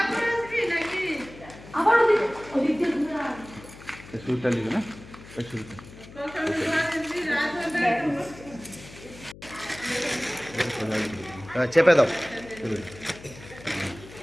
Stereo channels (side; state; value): left; noise; hum, 18 dB below the sound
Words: শুরুটা লিখে না, শুরুটা চেপে দাও।